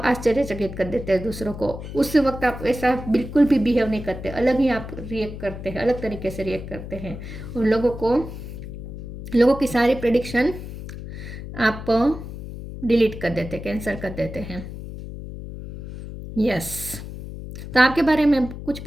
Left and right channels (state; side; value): noise; left; hum, 10 dB below the sound